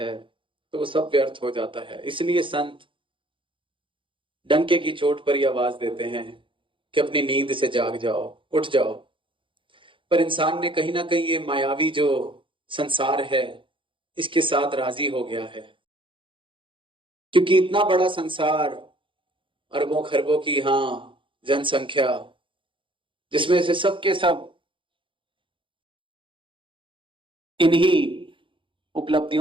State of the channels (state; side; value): late; left; 0.25 ms